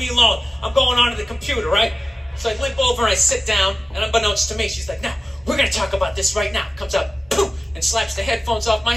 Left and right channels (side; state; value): both; normal; correlation 0.96